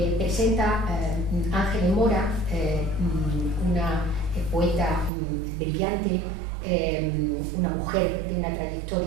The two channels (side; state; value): left; drops out; at 5.1 s